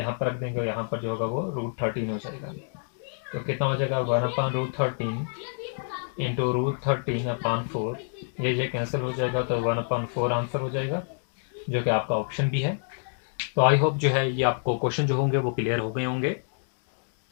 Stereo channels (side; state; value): right; silent; digital silence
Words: पर रख देंगे और यहाँ पर जो होगा वो √13 हो जाएगा। तो कितना हो जाएगा 1/√13 इंटू √13/4। ये कैंसिल हो जाएगा तो 1/4 आंसर हो जाएगा, जो कि आपका ऑप्शन भी है। तो आई होप जो है ये आपको क्वेश्चन जो होंगे वो क्लियर हो गए होंगे।